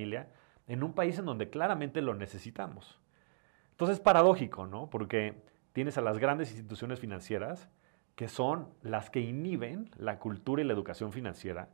en un país en donde claramente lo necesitamos. Entonces es paradójico, ¿no? Porque tienes a las grandes instituciones financieras que son las que inhiben la cultura y la educación financiera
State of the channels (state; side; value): silent; left; digital silence